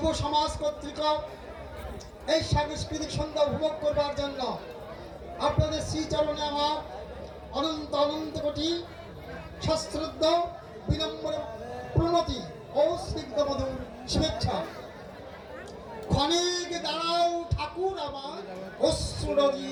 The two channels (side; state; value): both; identical; correlation 1.00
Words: সমাজ কর্তৃক এই সাংস্কৃতিক সন্ধ্যা উপভোগ করবার জন্য আপনাদের শ্রীচরণে আমার অনন্ত অনন্ত কোটি সশ্রদ্ধ বিনম্র প্রণতি ও স্নিগ্ধ মধুর শুভেচ্ছা। ক্ষণিক দাঁড়াও ঠাকুর আমার অশ্রু